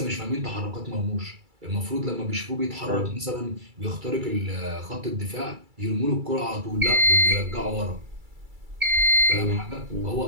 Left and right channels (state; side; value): late; left; 2.3 ms